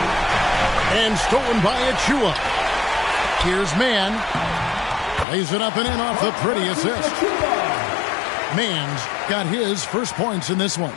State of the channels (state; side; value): drops out; right; at 5.2 s